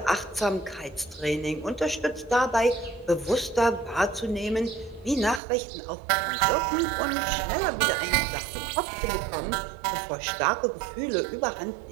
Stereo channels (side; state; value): left; drops out; at 5.4 s